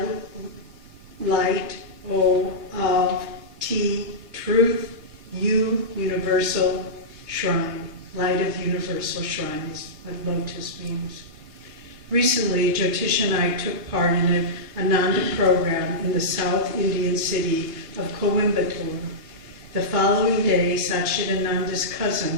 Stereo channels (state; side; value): late; left; 3.3 ms